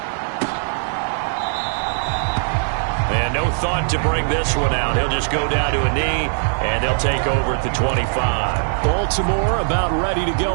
And no thought to bring this one out. He'll just go down to a knee, and they'll take over at the 25. Baltimore about ready to go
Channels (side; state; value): left; silent; 66 dB below the other